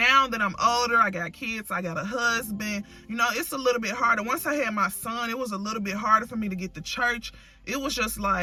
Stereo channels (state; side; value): identical; both; correlation 1.00